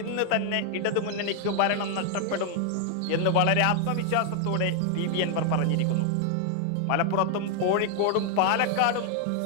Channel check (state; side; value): different; both; correlation 0.00